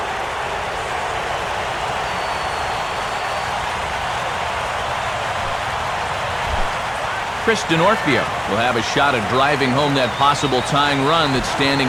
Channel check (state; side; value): identical; both; correlation 1.00